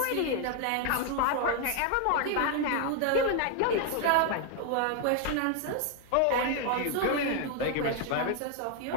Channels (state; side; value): different; both; correlation 0.00